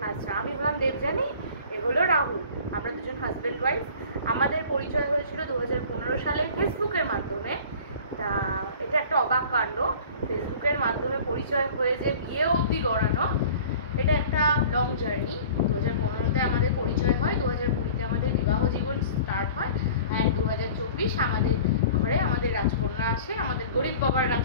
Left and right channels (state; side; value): inverted; both; correlation -0.44